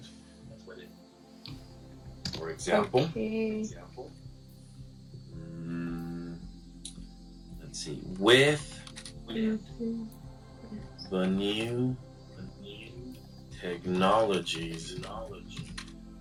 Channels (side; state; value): both; identical; correlation 1.00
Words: For example, Okay. let's see, with Mhm. the new technologies